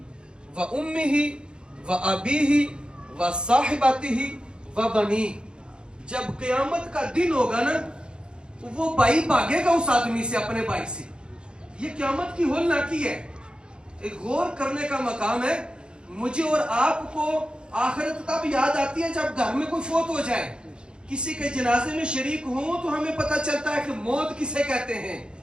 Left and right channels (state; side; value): late; left; 0.051 ms